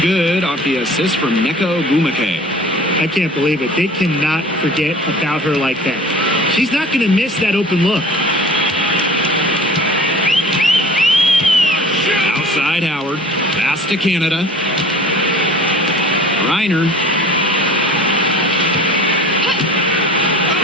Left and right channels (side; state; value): both; normal; correlation 0.44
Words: good off the assist from Nneka Ogumake. I can't believe it. They cannot forget about her like that. She's not going to miss that open look. Outside Howard. Pass to Canada. Reiner.